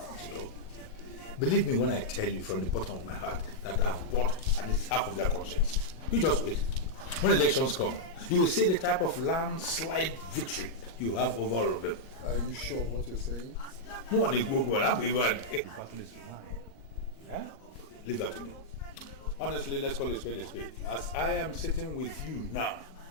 you know. Believe me when I tell you from the bottom of my heart that I've bought at least half of their conscience. You just wait. When elections come, you will see the type of landslide victory you have over all of them. Are you sure of what you're saying? Leave that to me. Honestly, let's call a spade a spade. As I am sitting with you now,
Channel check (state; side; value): late; right; 38 ms